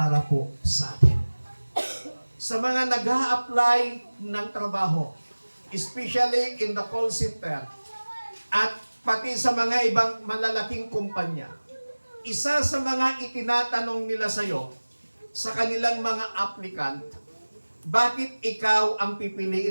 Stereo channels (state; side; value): inverted; both; correlation -1.00